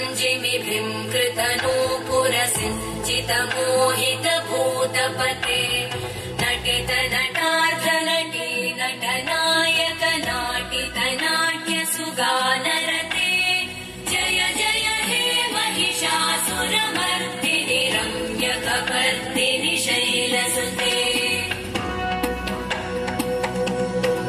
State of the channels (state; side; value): identical; both; correlation 1.00